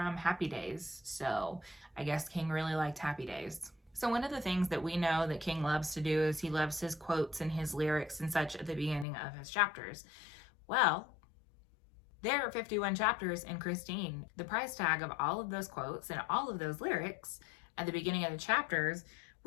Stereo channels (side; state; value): right; drops out; at 9.1 s